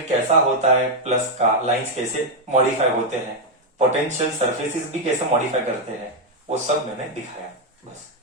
कैसा होता है प्लस का, लाइंस कैसे मॉडिफाई होते हैं, पोटेंशियल सरफेसेस भी कैसे मॉडिफाई करते हैं, वो सब मैंने दिखाया। बस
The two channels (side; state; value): both; normal; correlation 0.00